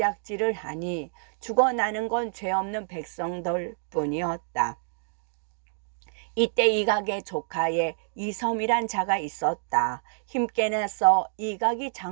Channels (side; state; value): left; silent; digital silence